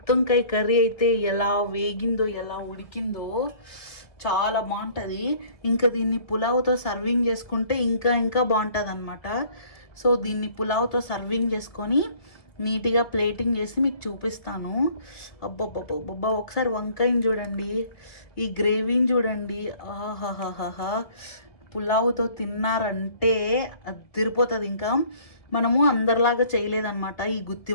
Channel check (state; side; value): late; right; 1.8 ms